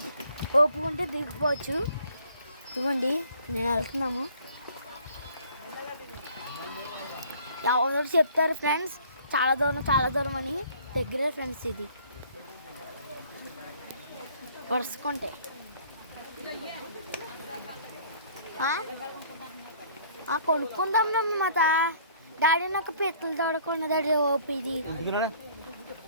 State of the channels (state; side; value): inverted; both; correlation -0.56